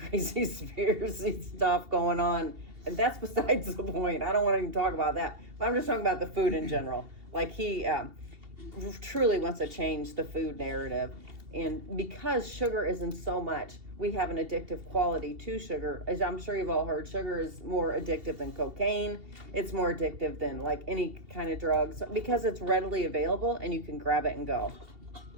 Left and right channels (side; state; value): left; late; 2.7 ms